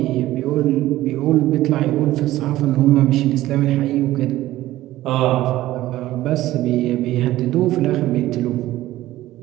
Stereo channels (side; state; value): left; quieter; 15.5 dB